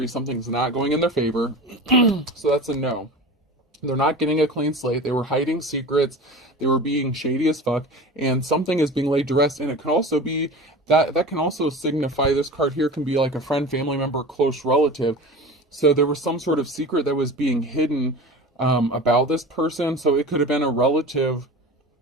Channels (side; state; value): both; normal; correlation 0.34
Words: Something's not going in their favor. So that's a no. They're not getting a clean slate. They were hiding secrets. They were being shady as fuck. And something is being laid to rest. And it can also be, that can also signify, this card here can be like a friend, family member, close relative. So there was some sort of secret that was being hidden about this person. So it could have been a relative